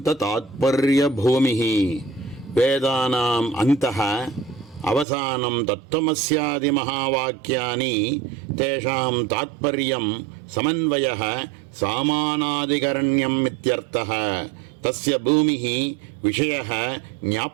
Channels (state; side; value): drops out; left; at 5.1 s